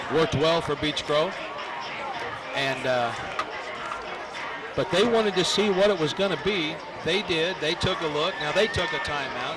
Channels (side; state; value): both; identical; correlation 1.00